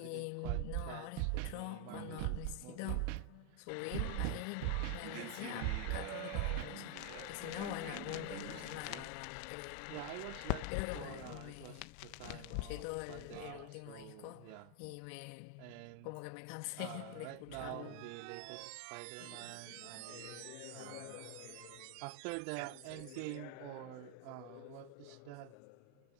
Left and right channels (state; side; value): different; both; correlation 0.00